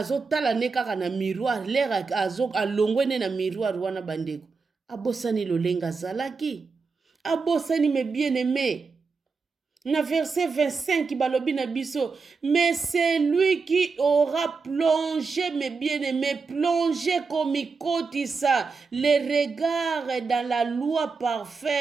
ne kaka na miroir, lera alongwe ne na miroir wana bandeko, abosani lolenga zalaki, abosani mes bien-aimés. Na verset 25 balobi na biso, mais c'est lui qui aura plongé, mes bien-aimés, plongé comme ikotisa les regards dans la loi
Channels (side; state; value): left; quieter; 4.7 dB